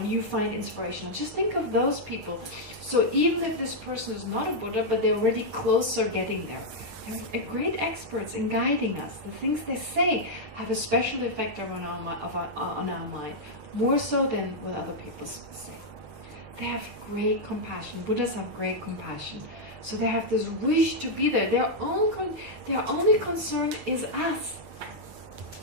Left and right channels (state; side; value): late; left; 6.5 ms